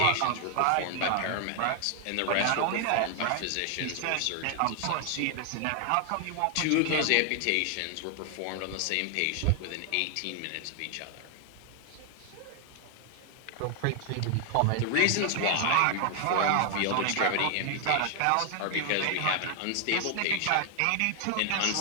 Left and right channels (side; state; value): both; different; correlation 0.00